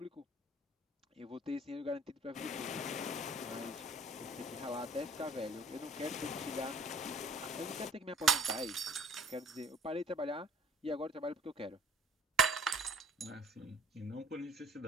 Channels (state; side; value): normal; both; correlation 0.52